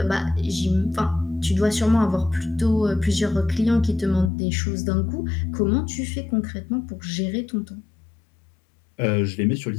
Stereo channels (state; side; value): drops out; right; at 4.3 s